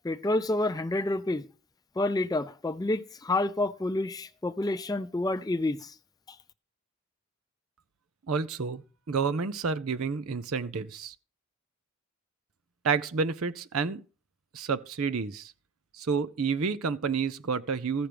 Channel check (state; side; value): normal; both; correlation 0.47